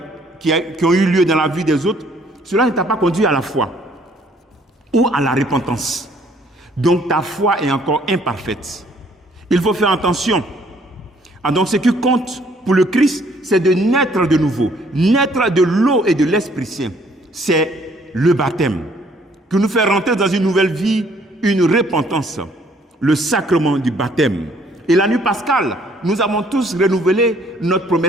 qui ont eu lieu dans la vie des autres, cela ne t'a pas conduit à la foi ou à la repentance. Donc ta foi est encore imparfaite. Il faut faire attention. Donc ce qui compte pour le Christ, c'est de naître de nouveau. Naître de l'eau et de l'Esprit Saint. C'est le baptême qui nous fait rentrer dans une nouvelle vie, une repentance. Le sacrement du baptême. Et la nuit pascale, nous avons tous renouvelé notre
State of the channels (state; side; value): normal; both; correlation 0.63